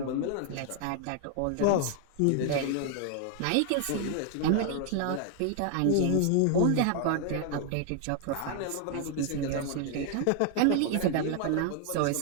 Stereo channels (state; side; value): different; both; correlation 0.00